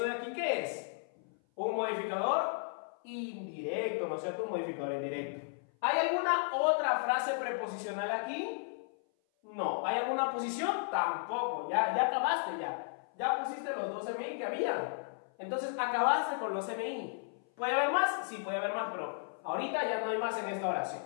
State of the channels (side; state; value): right; silent; 55 dB below the other